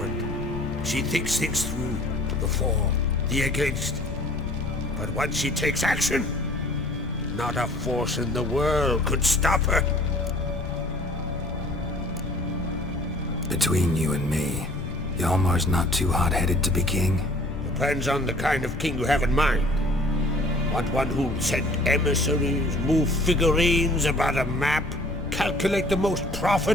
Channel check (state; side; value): noise; left; rumble, 9 dB below the sound